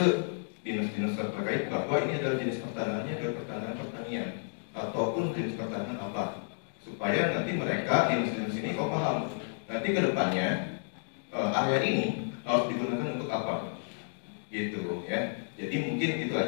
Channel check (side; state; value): right; silent; digital silence